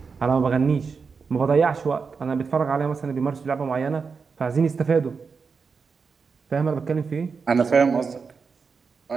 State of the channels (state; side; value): quieter; left; 5.3 dB